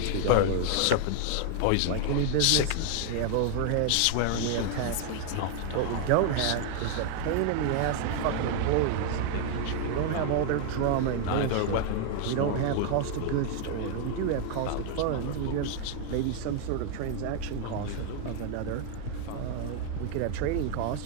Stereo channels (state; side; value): different; both; correlation 0.00